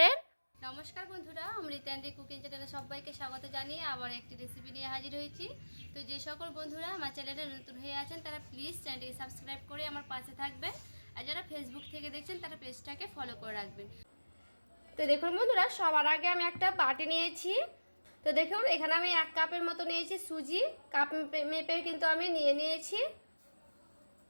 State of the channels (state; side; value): inverted; both; correlation -1.00